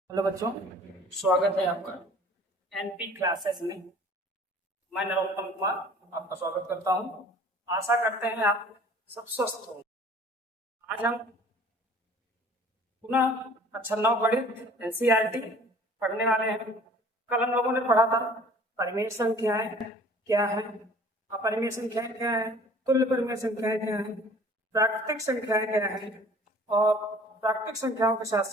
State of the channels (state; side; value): normal; both; correlation 0.50